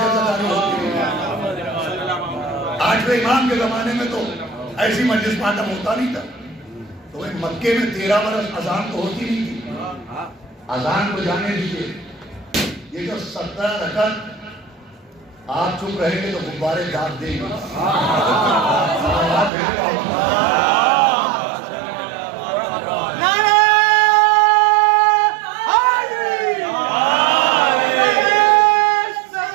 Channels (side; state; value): left; drops out; at 19.5 s